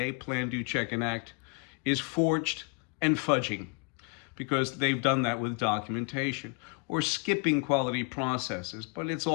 Plan, Do, Check, and Act, is forged and fudging, because they've done that with documentation, or skipping quality processes, but it's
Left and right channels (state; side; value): quieter; right; 35.3 dB